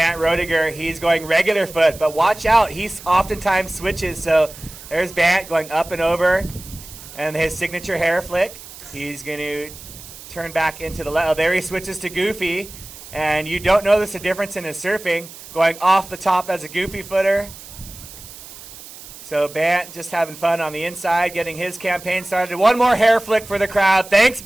Roediger. He's going regular foot, but watch out. He oftentimes switches. So there's Bernd going up and over, and his signature hair flick. He's going to turn back into the left. Oh, there he switches to goofy, and you don't notice a difference in his surfing, going off the top as a goofy footer. So Bernd just having fun on the inside, getting his campaign started. One more hair flick for the crowd. Thanks,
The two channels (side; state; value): right; noise; hiss, 16 dB below the sound